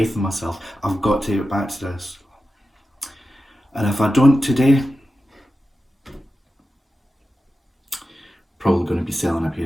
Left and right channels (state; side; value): normal; both; correlation 0.92